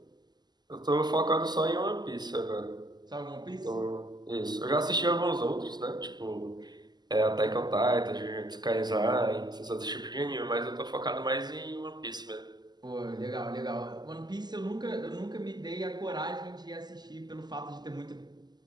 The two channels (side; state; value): left; late; 0.20 ms